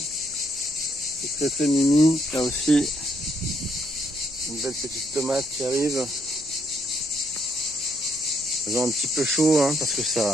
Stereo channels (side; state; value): right; noise; hum, 25 dB below the sound